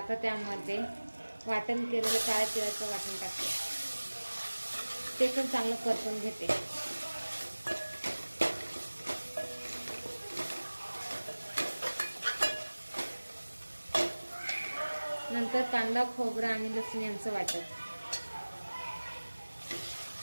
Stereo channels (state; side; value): inverted; both; correlation -1.00